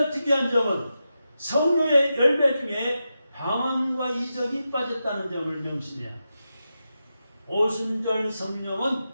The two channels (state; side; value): inverted; both; correlation -0.89